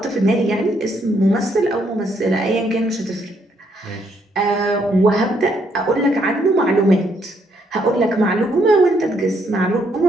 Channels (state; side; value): normal; both; correlation 0.72